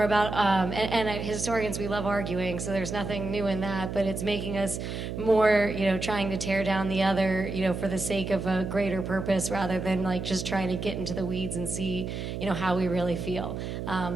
about, and historians, we love arguing, so there's nothing new in that, but it's making us more, trying to tear down the other, for the sake of a greater purpose rather than like just trying to get into the weeds and see, how we really feel.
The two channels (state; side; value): noise; right; hum, 5 dB below the sound